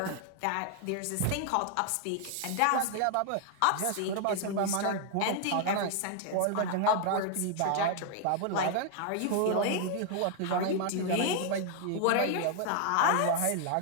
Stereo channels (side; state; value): both; different; correlation 0.00